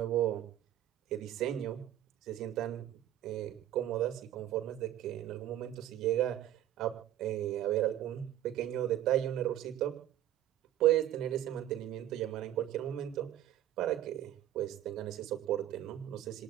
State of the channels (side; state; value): left; quieter; 12.3 dB